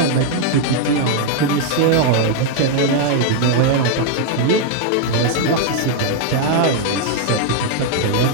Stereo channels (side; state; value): both; different; correlation 0.00